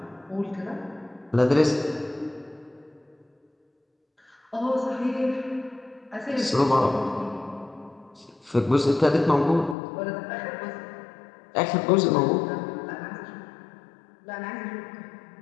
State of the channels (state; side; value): drops out; right; at 9.8 s